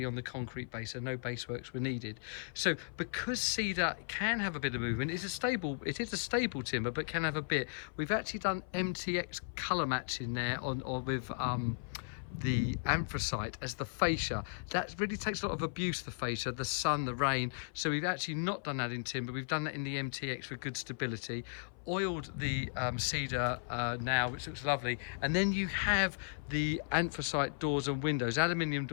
on the concrete base, so no base works were needed. So because cedar can have a bit of movement, it is a stable timber, but can have a bit. We've actually done MTX colour matching there with the anthracite as the fascia. That really takes a lot of abuse, the fascia, the sun, the rain. So we've actually not done that in timber, we've done that in the MTX for good stability. Oiled the cedar now, which looks lovely, and then you have the anthracite doors and windows, aluminium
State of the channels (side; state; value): right; silent; 54 dB below the other